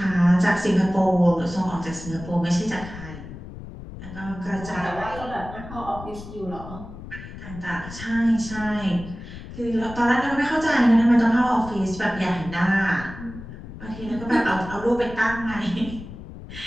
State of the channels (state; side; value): noise; left; rumble, 13 dB below the sound